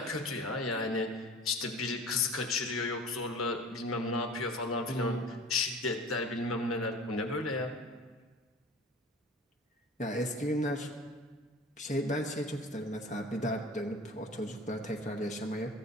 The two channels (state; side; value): normal; both; correlation 0.40